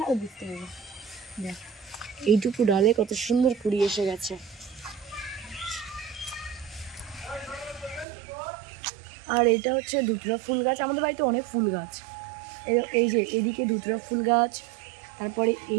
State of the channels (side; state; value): left; drops out; at 8.1 s